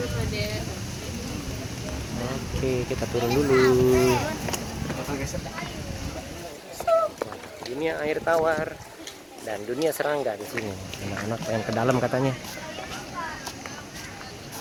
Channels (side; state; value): both; identical; correlation 1.00